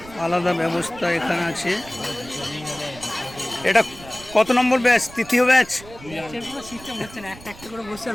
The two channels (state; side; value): noise; right; rumble, 18 dB below the sound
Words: আলাদা ব্যবস্থা এখানে আছে। এটা কত নম্বর ব্যাচ? তৃতীয় ব্যাচ।